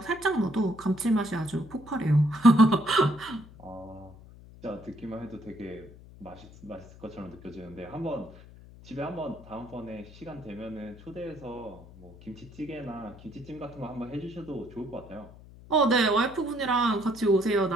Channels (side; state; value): left; noise; hum, 20 dB below the sound